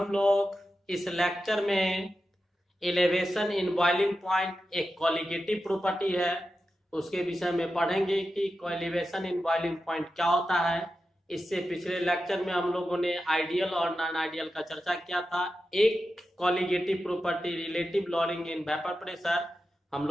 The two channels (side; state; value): both; normal; correlation 0.91